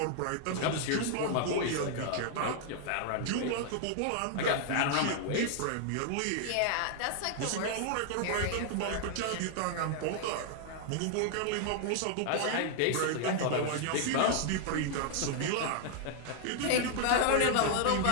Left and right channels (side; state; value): both; different; correlation 0.00